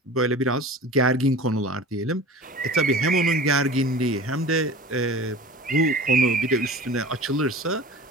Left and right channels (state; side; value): normal; both; correlation 0.38